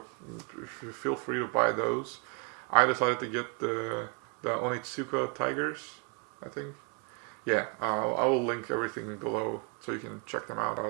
feel free to buy those. I decided to get the Onitsuka Tigers, I think. Yeah, I will link everything below so you can check them out.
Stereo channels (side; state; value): left; quieter; 34.5 dB